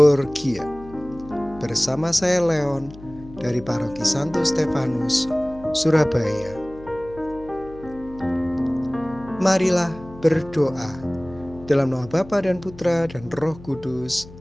Bersama saya Leon dari Paroki Santo Stefanus, Surabaya. Marilah berdoa dalam nama Bapa dan Putra dan Roh Kudus.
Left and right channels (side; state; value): left; noise; hum, 18 dB below the sound